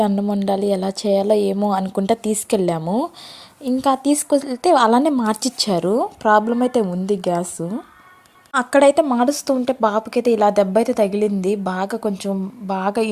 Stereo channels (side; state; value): both; identical; correlation 1.00